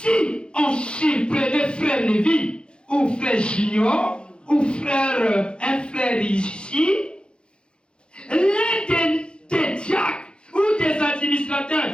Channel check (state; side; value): late; right; 0.054 ms